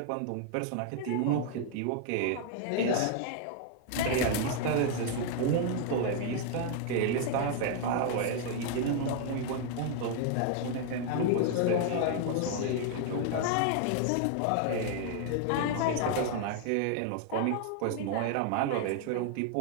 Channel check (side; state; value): both; different; correlation 0.00